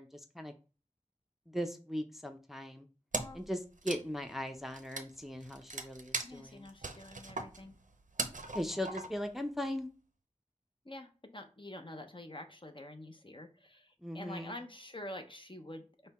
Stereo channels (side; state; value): both; normal; correlation 0.66